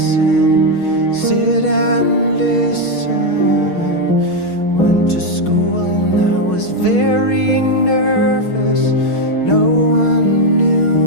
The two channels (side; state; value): right; late; 6.3 ms